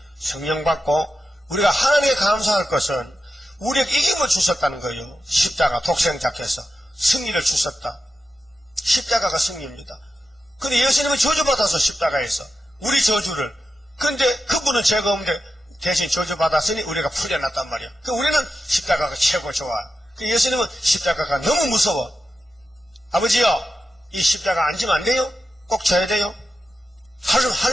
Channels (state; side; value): normal; both; correlation 0.90